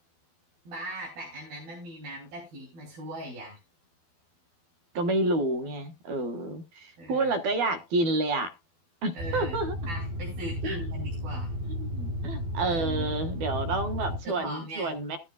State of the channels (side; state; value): left; late; 12 ms